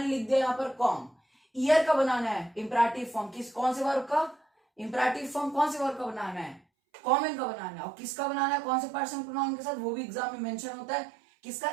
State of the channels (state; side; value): drops out; left; at 6.6 s